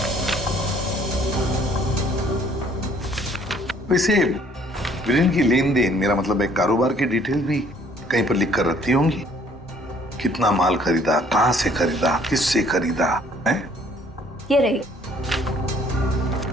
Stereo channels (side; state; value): both; normal; correlation 0.60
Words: वैसे वीरेन की लेन देन, मेरा मतलब है कारोबार की डिटेल भी कहीं पर लिख कर रखती होंगी। कितना माल खरीदा, कहाँ से खरीदा, किससे खरीदा है? ये रही।